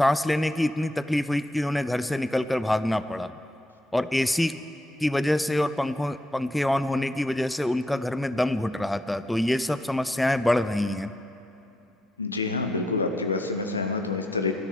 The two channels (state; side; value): normal; both; correlation 0.79